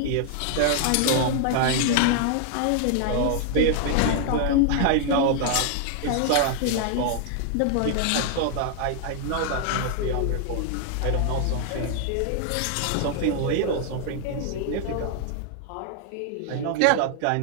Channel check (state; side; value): different; both; correlation 0.00